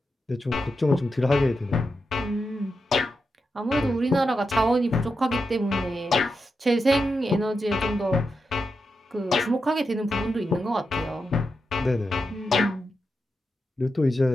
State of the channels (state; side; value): normal; both; correlation 0.87